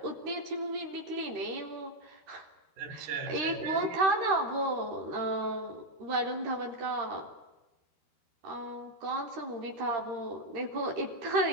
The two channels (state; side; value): late; left; 13 ms